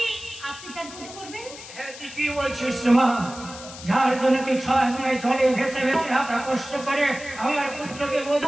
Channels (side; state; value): left; noise; hiss, 15 dB below the sound